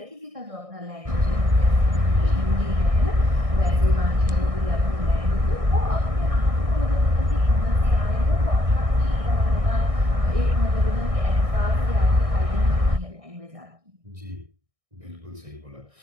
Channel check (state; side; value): late; left; 1.6 ms